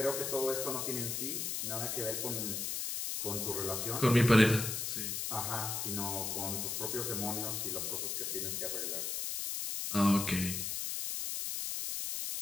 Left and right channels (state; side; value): noise; left; hiss, 2 dB below the sound